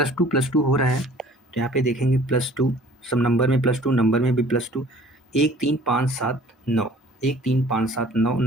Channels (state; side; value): normal; both; correlation 0.51